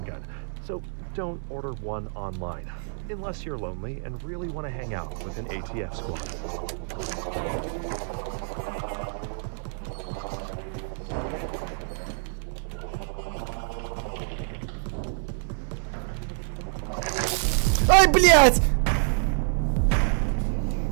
gun, so don't order one online, unless you're lonely and really want to hang out with an ATF squad. Ай, блядь!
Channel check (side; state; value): left; silent; digital silence